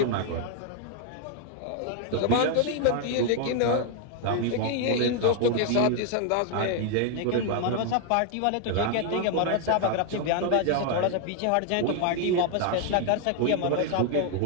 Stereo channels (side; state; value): both; different; correlation 0.00